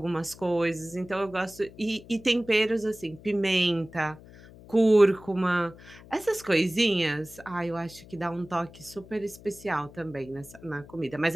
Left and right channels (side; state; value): left; noise; hum, 20 dB below the sound